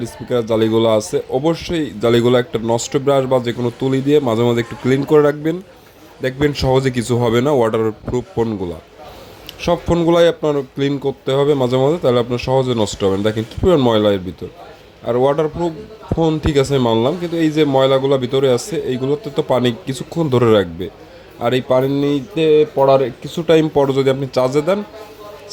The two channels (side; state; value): both; identical; correlation 1.00